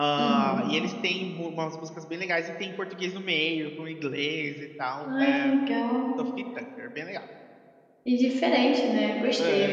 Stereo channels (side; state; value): both; identical; correlation 1.00